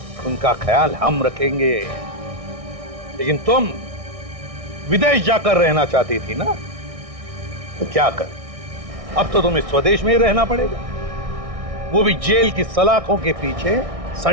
उनका ख्याल हम रखेंगे। लेकिन तुम विदेश जाकर रहना चाहती थी ना, तो क्या कर, अब तो तुम्हें स्वदेश में ही रहना पड़ेगा, वो भी जेल की सलाखों के पीछे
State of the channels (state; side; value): late; left; 1.6 ms